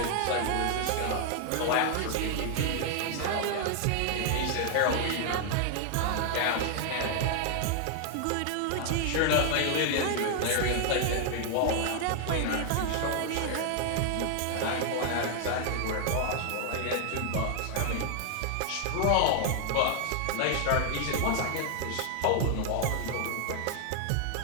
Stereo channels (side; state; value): both; different; correlation 0.00